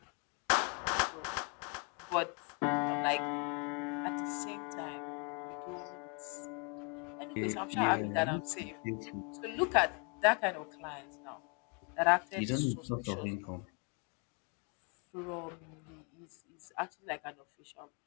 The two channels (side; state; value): right; quieter; 34.8 dB